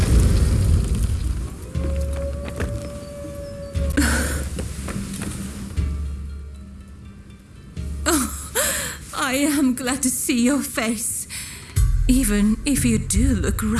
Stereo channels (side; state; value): both; identical; correlation 1.00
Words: I am glad to see your face, even if you do look